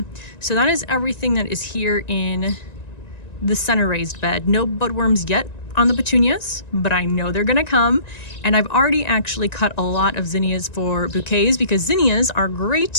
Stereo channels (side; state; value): right; late; 1.9 ms